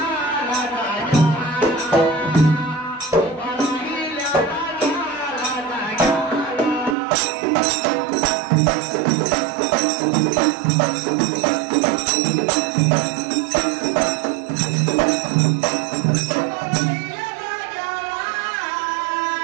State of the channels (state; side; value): drops out; left; at 7.0 s